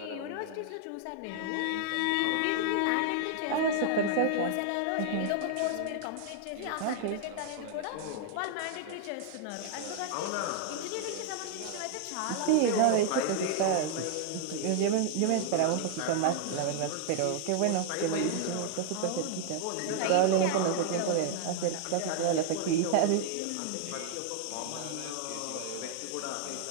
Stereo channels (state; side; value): different; both; correlation 0.00